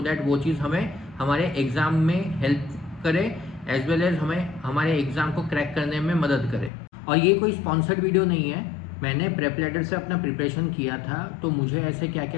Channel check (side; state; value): right; drops out; at 6.7 s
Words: दैट वो चीज़ हमें हमारे एग्ज़ाम में हेल्प करे, एज वेल एज हमें हमारे एग्ज़ाम को क्रैक करने में मदद करे। और ये कोई स्पॉन्सर्ड वीडियो नहीं है, मैंने प्रेप लैडर से अपना प्रिपरेशन किया था, तो मुझे ऐसे क्या